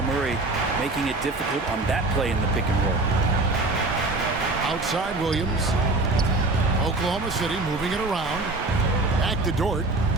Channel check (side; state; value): left; quieter; 3.1 dB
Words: Murray making it difficult on that play in the pick and roll. Outside Williams. Oklahoma City moving it around. Back to Dort.